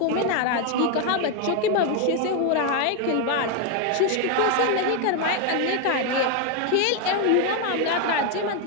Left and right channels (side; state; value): both; different; correlation 0.01